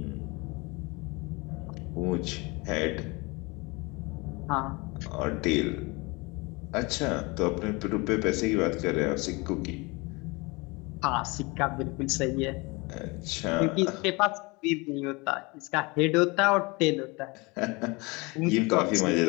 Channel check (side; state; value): right; quieter; 26.3 dB